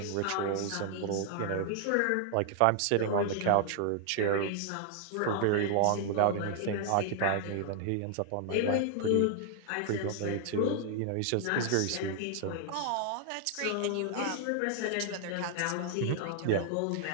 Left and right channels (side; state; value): both; different; correlation 0.00